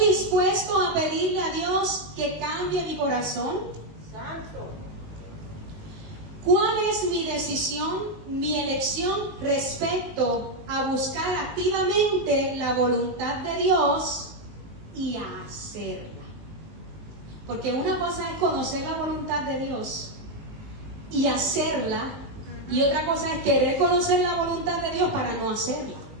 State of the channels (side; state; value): left; late; 19 ms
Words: dispuesto a pedirle a Dios que cambie mi corazón? ¿Cuál es mi decisión, mi elección respecto a buscar activamente la voluntad de Dios y a hacerla? Porque una cosa es conocer la voluntad de Dios y hacerla, y otra cosa es querer conocer la voluntad de Dios para no hacerla.